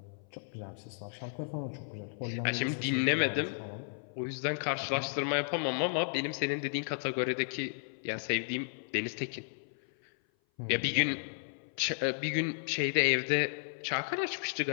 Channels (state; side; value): silent; right; 55 dB below the other